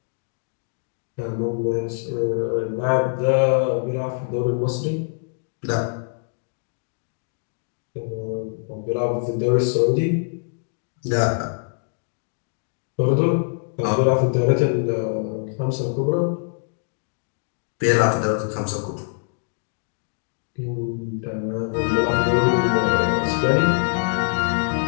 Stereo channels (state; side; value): silent; right; digital silence